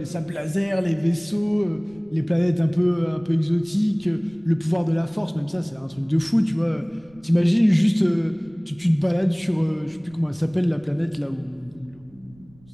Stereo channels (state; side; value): noise; right; rumble, 28 dB below the sound